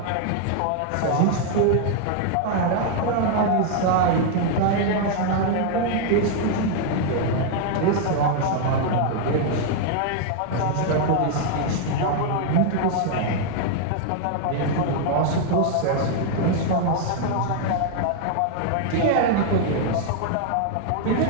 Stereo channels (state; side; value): different; both; correlation 0.00